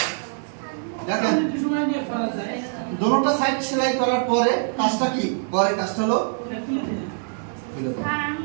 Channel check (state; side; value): silent; left; 63 dB below the other